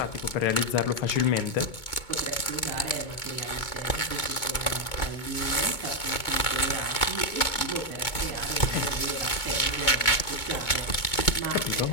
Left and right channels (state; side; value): late; right; 2.2 ms